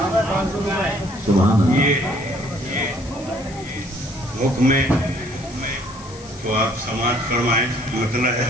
یہ حکم تو آپ سماعت فرمائیں مطلب ہے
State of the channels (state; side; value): noise; left; hiss, 19 dB below the sound